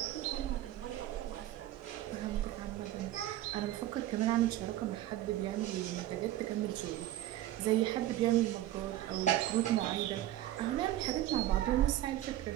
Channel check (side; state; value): left; quieter; 14.1 dB